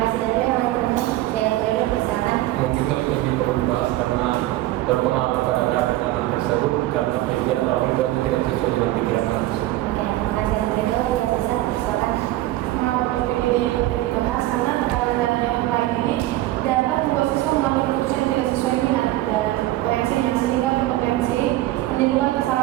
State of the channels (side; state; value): left; quieter; 16.0 dB